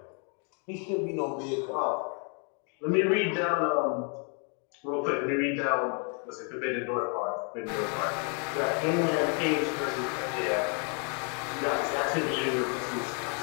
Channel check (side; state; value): right; quieter; 38.5 dB